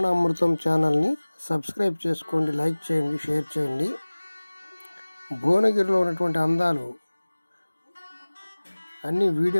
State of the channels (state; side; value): inverted; both; correlation -1.00